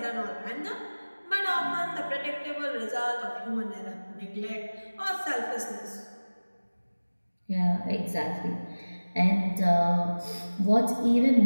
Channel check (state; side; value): inverted; both; correlation -1.00